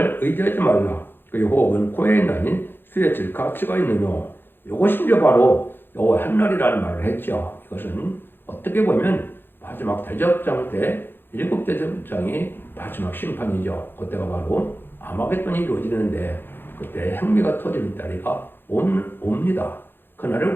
의지하지 말라. 그의 호흡은 코에 있나니 수에 가치가 있느뇨. 이것이 이제 바로 여호와 한 날이라는 말을 했죠. 이것은 어떻게 보면 마지막 대접장 때 7대접장이 마지막 심판이죠. 그때가 바로 아마겟돈이 이루어지는데 그때 행미가 터지는 날이가 옵니다. 그날을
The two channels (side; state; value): right; late; 0.10 ms